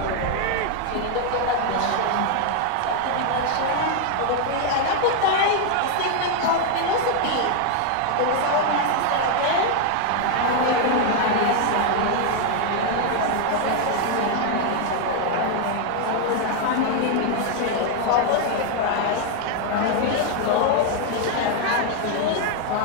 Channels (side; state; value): both; different; correlation 0.00